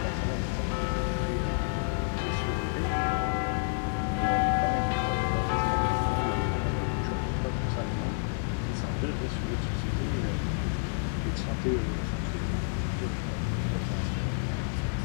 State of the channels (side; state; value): right; silent; digital silence